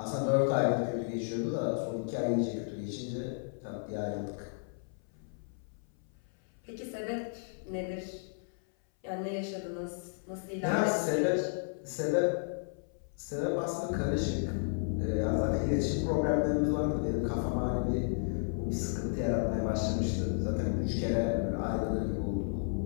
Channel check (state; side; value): silent; right; 56 dB below the other